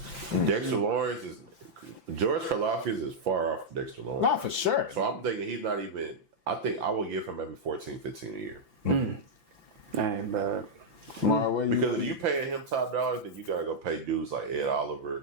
Dexter Lawrence is, George Karlaftis is far off from Dexter Lawrence. Not for sure. So I'm thinking he's not even, I think I will give him maybe 14, 15 a year. That ain't bad. Omari, where you- Because if you paying him top dollars, then you gotta go pay dudes like Ed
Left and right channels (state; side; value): late; left; 5.9 ms